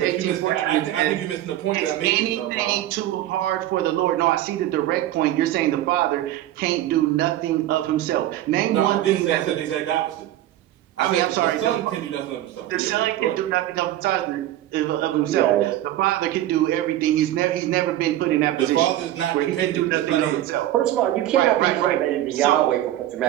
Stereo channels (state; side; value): quieter; left; 13.6 dB